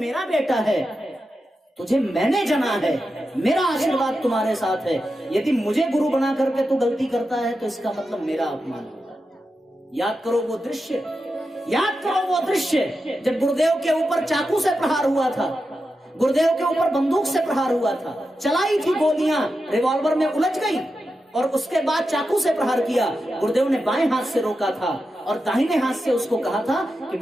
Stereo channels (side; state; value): both; normal; correlation 0.89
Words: बेटा है, तुझे मैंने जना है, मेरा आशीर्वाद तुम्हारे साथ है। यदि मुझे गुरु बना करके तू गलती करता है तो इसका मतलब मेरा अपमान होगा। याद करो वो दृश्य, याद करो वो दृश्य जब गुरुदेव के ऊपर चाकू से प्रहार हुआ था, गुरुदेव के ऊपर बंदूक से प्रहार हुआ था, चलाई थी गोलियां, रिवॉल्वर में उलझ गई और उसके बाद चाकू से प्रहार किया। गुरुदेव ने बाएं हाथ से रोका था और दाहिने हाथ से उसको कहा था कि